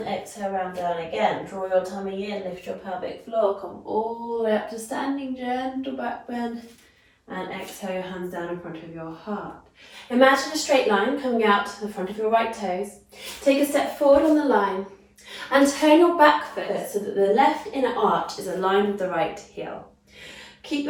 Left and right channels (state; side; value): identical; both; correlation 1.00